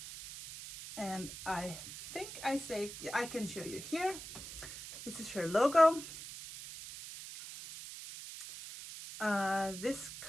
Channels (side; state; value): right; noise; hiss, 11 dB below the sound